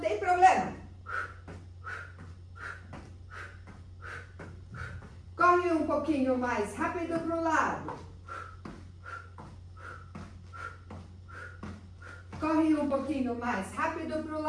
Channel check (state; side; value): identical; both; correlation 1.00